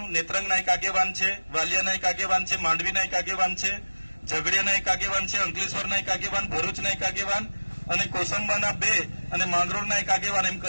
નેત્રંગના એક આગેવાન છે, વાલિયાના એક આગેવાન છે, માંડવીના એક આગેવાન છે, ઝઘડિયાના એક આગેવાન છે, અંકલેશ્વરના એક આગેવાન, ભરૂચના એક આગેવાન અને કોસંબાના 2 અને માંગરોળના એક આગેવાન, એમ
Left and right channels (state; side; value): inverted; both; correlation -1.00